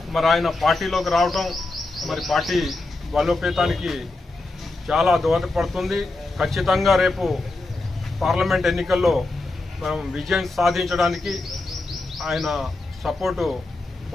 మరి ఆయన పార్టీలోకి రావడం మరి పార్టీ బలోపేతానికి చాలా దోహదపడుతుంది. ఖచ్చితంగా రేపు పార్లమెంట్ ఎన్నికల్లో మనం విజయం సాధించడానికి ఆయన సపోర్టు,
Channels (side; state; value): right; quieter; 3.1 dB